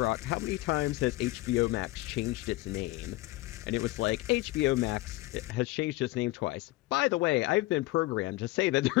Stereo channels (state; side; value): quieter; right; 19.0 dB